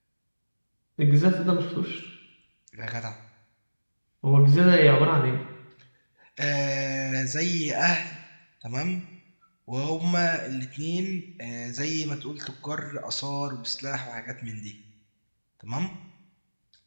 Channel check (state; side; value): inverted; both; correlation -1.00